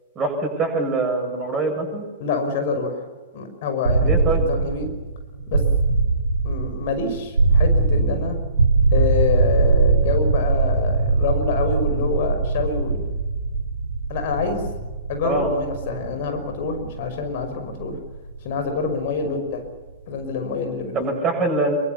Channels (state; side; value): inverted; both; correlation -0.46